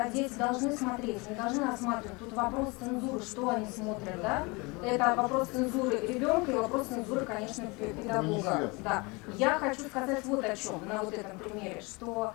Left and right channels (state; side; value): quieter; right; 27.0 dB